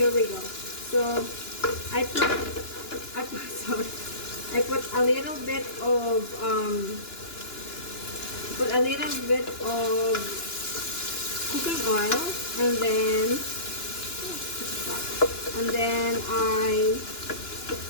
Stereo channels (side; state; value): right; late; 2.9 ms